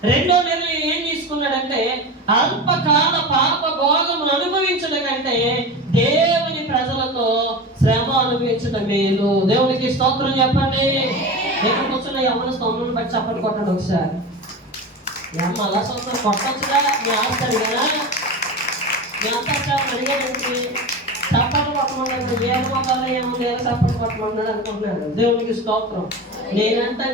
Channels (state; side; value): normal; both; correlation 0.27